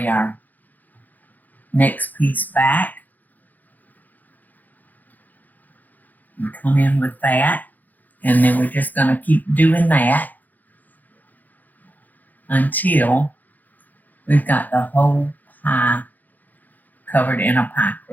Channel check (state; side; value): late; right; 0.083 ms